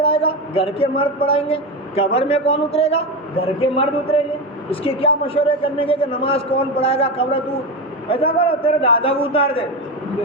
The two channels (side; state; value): both; normal; correlation 0.17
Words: گا گھر کے مرد پڑھائیں گے. قبر میں کون اترے گا گھر کے مرد اتریں گے. اس کے کیا مشورے کرنے کے کہ نماز کون پڑھائے گا قبر تو ایسا کرو تیرے دادا کو اتار دے